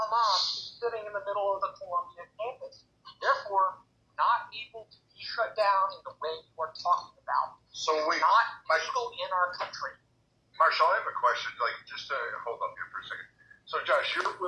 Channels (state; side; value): identical; both; correlation 1.00